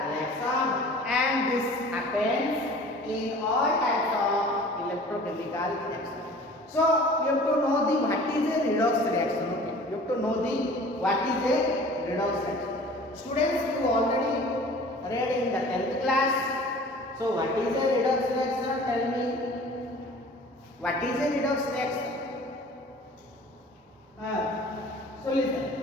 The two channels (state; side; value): normal; both; correlation 0.45